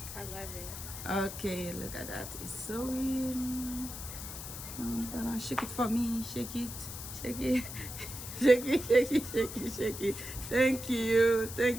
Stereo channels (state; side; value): noise; left; hiss, 9 dB below the sound